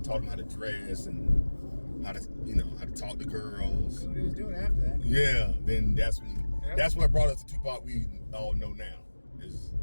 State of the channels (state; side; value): inverted; both; correlation -1.00